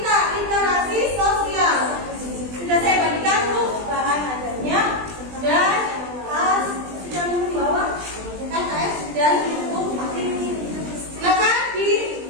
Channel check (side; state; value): left; late; 20 ms